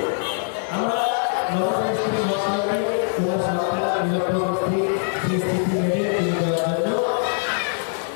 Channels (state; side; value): silent; right; 55 dB below the other